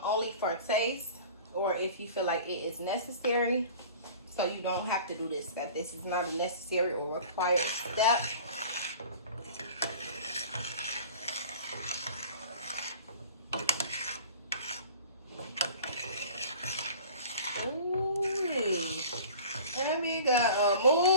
for taste or if you feel like it is necessary. So you don't have to do this step. This is not a necessary or required step. Ooh, and we got a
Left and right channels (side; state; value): both; inverted; correlation -0.42